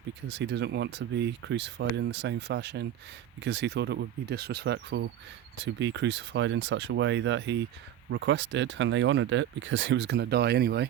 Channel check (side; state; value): left; quieter; 11.1 dB